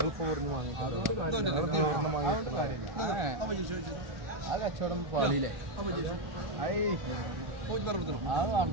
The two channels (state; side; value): late; left; 1.3 ms